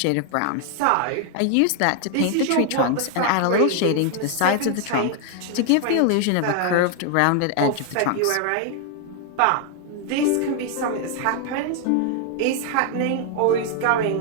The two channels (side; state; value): both; different; correlation 0.00